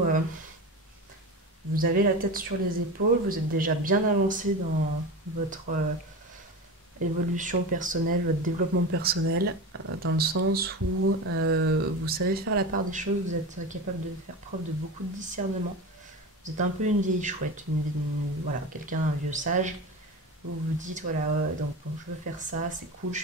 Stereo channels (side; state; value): both; normal; correlation 0.26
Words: vous avez la tête sur les épaules, vous êtes déjà bien avancé dans votre évolution personnelle, votre développement personnel, dans le sens où vous savez faire la part des choses, vous êtes capable de faire preuve de beaucoup de discernement. Vous êtes un peu une vieille chouette, voilà, quelqu'un, un vieux sage. Vous vous dites, voilà, donc bon, je veux faire ça, c'est cool, je